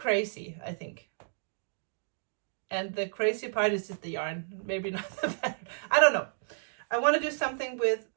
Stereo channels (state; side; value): silent; left; digital silence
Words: I think. And the crazy part is just the yarn, maybe not the pattern. I don't know. I want to do something with